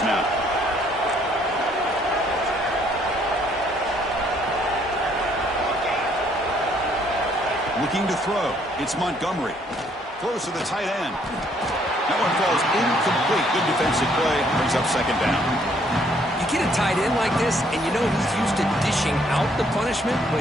now. Looking to throw. It's Montgomery. Throws to the tight end. That one falls incomplete. Good defensive play. Brings up second down. You get a tight end like this, and you know he's used to dishing out the punishment, but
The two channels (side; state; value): both; normal; correlation 0.66